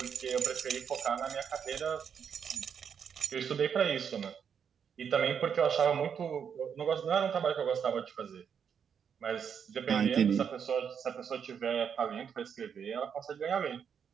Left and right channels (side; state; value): left; quieter; 7.4 dB